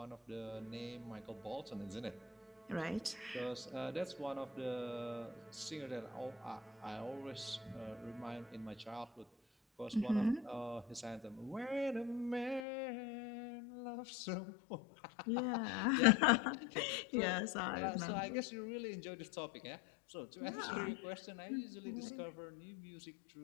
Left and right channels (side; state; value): right; drops out; at 12.6 s